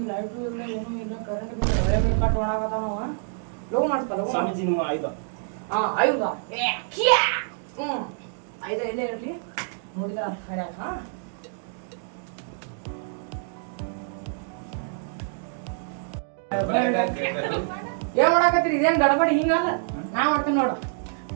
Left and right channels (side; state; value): left; silent; digital silence